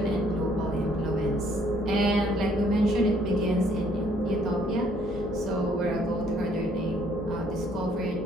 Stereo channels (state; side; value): normal; both; correlation 0.64